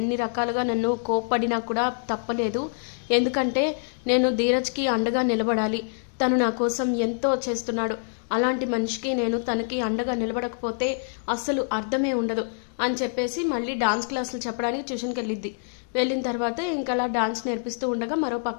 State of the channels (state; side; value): silent; right; digital silence